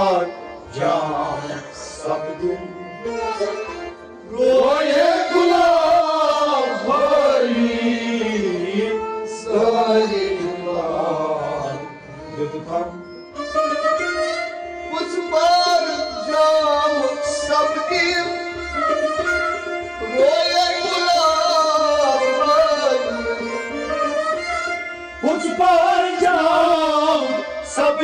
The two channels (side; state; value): both; identical; correlation 1.00